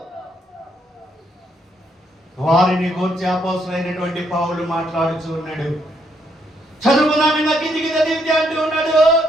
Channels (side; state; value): both; normal; correlation 0.74